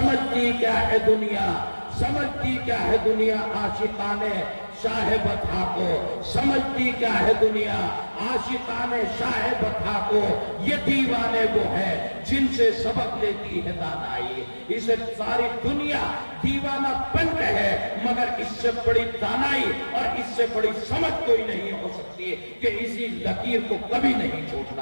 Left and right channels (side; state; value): both; inverted; correlation -1.00